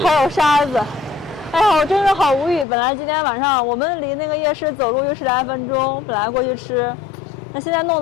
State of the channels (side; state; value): right; drops out; at 2.7 s